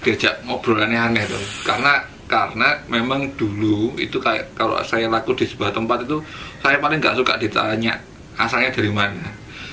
diajak ngobrol aneh-aneh tuh. Karena memang dulu itu kayak kalau saya laku di sebuah tempat itu saya paling nggak suka ditanya asalnya dari mana.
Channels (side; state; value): both; identical; correlation 1.00